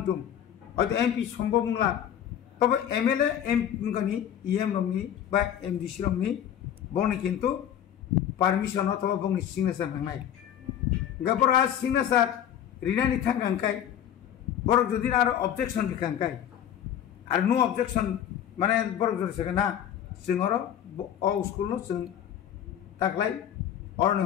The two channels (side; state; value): right; quieter; 10.0 dB